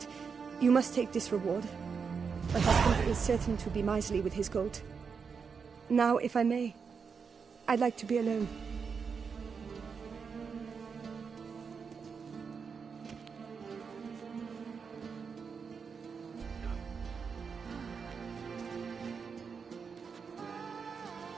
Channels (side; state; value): left; quieter; 5.8 dB